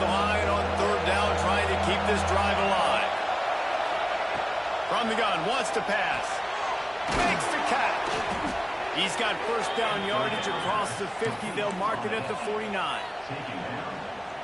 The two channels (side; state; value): both; identical; correlation 1.00